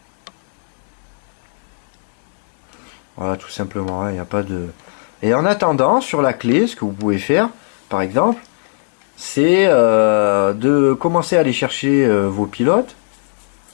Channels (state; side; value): silent; right; digital silence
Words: Voilà, tout simplement, il n'y a pas de... Et en attendant, sur la clé, ce que vous pouvez faire, par exemple, c'est de commencer à aller chercher vos pilotes,